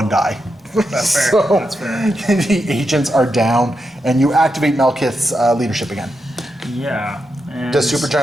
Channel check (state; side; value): normal; both; correlation 0.86